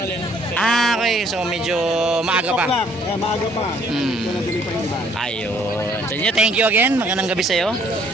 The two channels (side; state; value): both; normal; correlation 0.63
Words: okay. So medyo maaga pa. Maaga pa. Ito na tuloy pa yung iba. Ayun. So thank you again. Magandang gabi sa'yo.